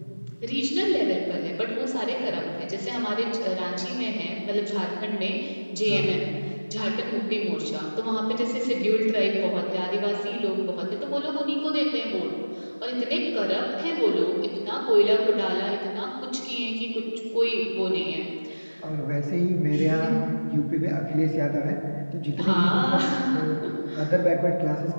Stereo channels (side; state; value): both; inverted; correlation -1.00